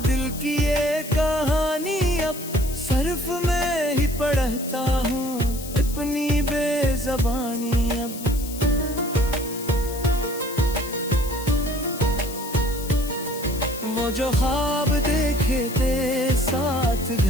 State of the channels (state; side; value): noise; left; hiss, 12 dB below the sound